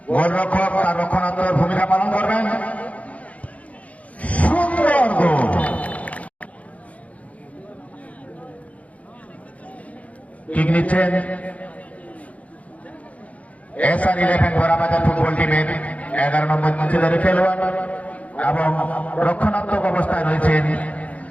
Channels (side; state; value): right; late; 0.067 ms